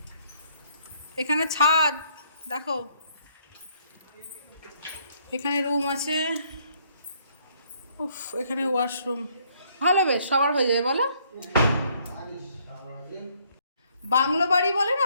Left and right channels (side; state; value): both; inverted; correlation -0.67